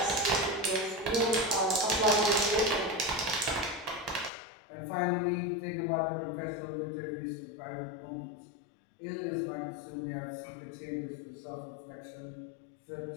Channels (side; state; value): right; drops out; at 4.3 s